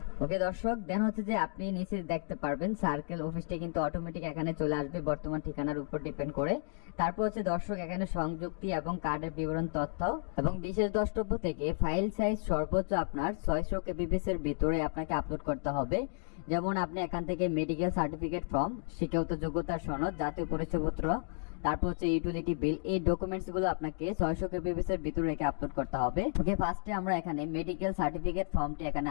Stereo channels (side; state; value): right; silent; 56 dB below the other